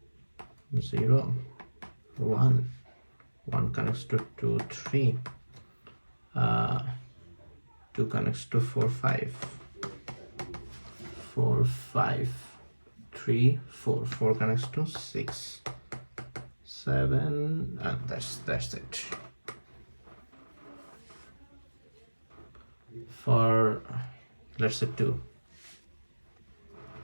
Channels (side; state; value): both; inverted; correlation -1.00